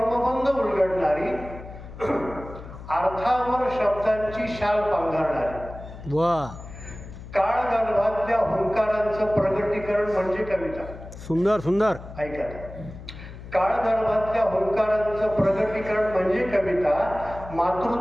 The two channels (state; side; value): noise; left; hum, 14 dB below the sound